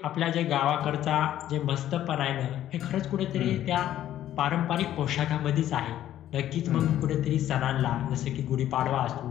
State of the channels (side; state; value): right; quieter; 12.2 dB